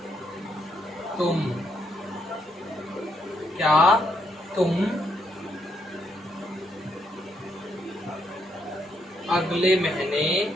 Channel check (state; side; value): normal; both; correlation 0.76